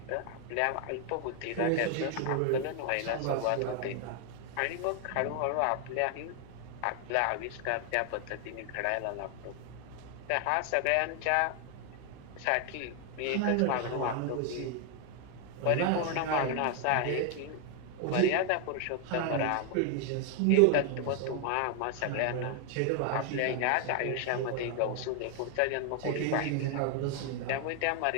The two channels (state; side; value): different; both; correlation 0.01